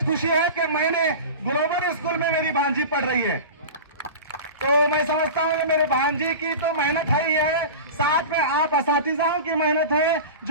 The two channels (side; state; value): both; inverted; correlation -0.31